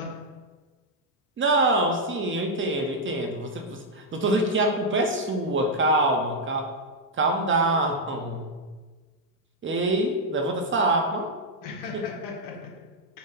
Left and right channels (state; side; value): normal; both; correlation -0.04